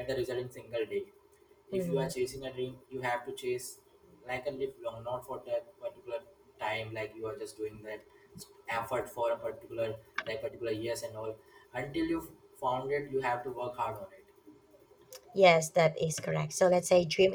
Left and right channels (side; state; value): both; identical; correlation 1.00